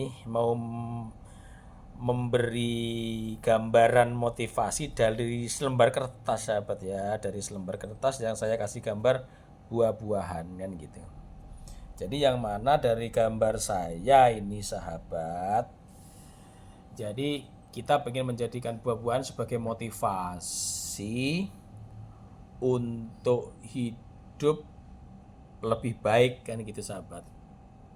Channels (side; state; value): both; identical; correlation 1.00